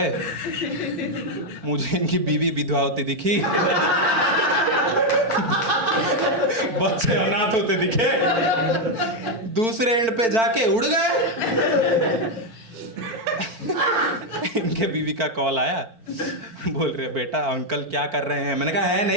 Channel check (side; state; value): left; late; 4.5 ms